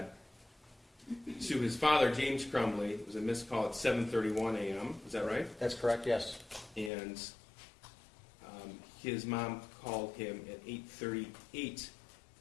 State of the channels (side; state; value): right; drops out; at 6.9 s